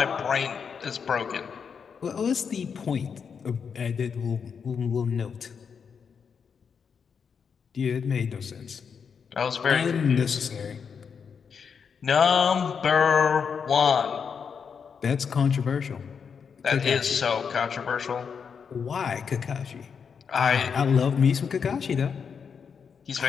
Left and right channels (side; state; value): right; quieter; 6.4 dB